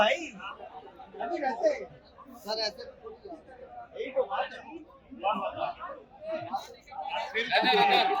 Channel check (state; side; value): identical; both; correlation 1.00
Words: अभी रहते हैं सर ऐसे यही तो बात है।